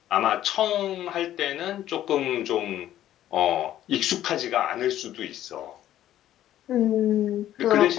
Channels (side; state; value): right; quieter; 12.4 dB